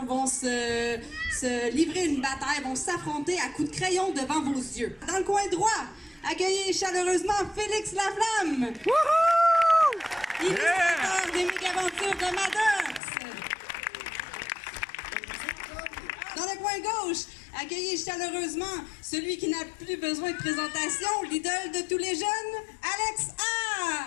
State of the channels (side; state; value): right; drops out; at 13.0 s